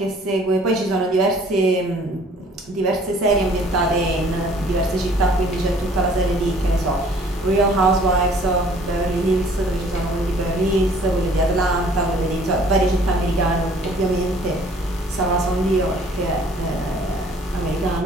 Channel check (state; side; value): normal; both; correlation 0.56